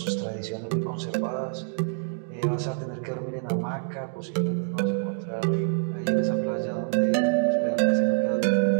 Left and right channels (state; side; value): silent; left; digital silence